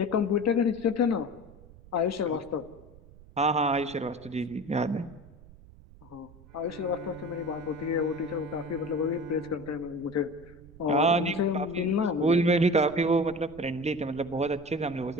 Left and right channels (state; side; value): noise; right; rumble, 22 dB below the sound